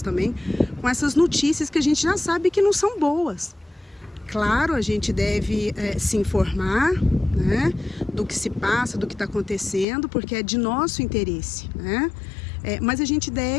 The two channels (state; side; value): drops out; right; at 9.9 s